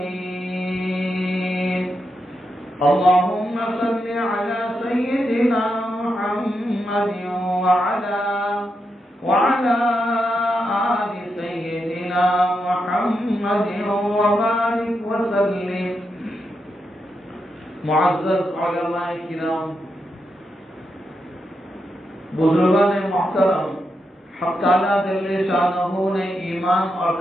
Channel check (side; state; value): both; normal; correlation 0.84